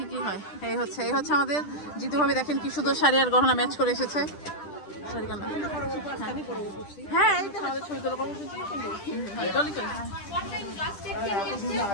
কি হয়। এই হচ্ছে আমাদের জিতু ভাবি। দেখেন কি সুন্দর শাড়ি আর গহনা ম্যাচ করে এসেছে। হ্যাঁ, এই তো আমাদের ছবি তোলা কর্মসূচি।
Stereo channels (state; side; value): late; right; 10 ms